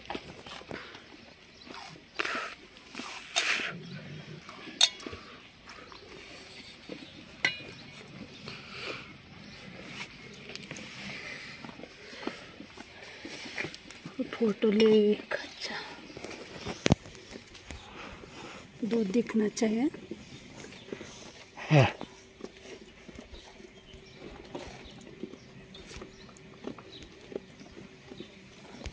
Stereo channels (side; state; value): both; identical; correlation 1.00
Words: फोटो ले एक अच्छा दूध दिखना चाहिए।